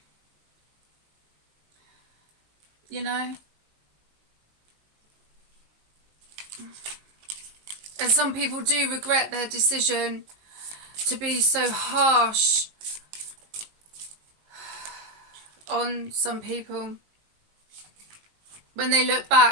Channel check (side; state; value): left; late; 19 ms